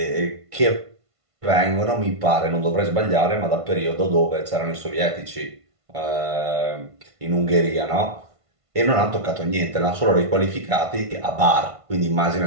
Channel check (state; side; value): late; left; 1.5 ms